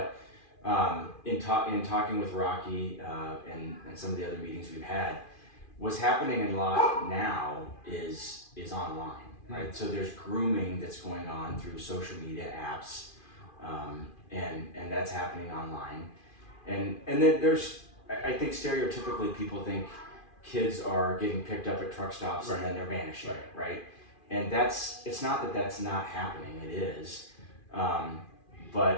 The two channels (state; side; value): late; right; 2.4 ms